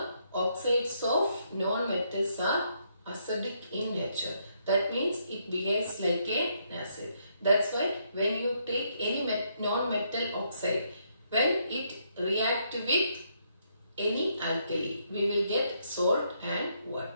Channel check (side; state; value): both; inverted; correlation -0.74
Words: oxides of non-metals are acidic in nature. That means it behaves like an acid. That's why when you take any non-metal oxide, when it reacts with any alkali, we will get salt and